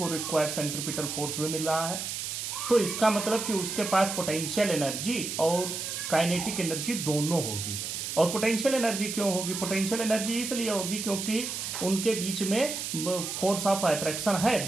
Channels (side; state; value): right; noise; hiss, 4 dB below the sound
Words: रिक्वायर्ड सेंट्रीपिटल फोर्स भी मिल रहा है। तो इसका मतलब कि उसके पास पोटेंशियल एनर्जी और काइनेटिक एनर्जी दोनों होगी। और पोटेंशियल एनर्जी क्यों होगी? पोटेंशियल एनर्जी इसलिए होगी क्योंकि उनके बीच में फोर्स ऑफ अट्रैक्शन है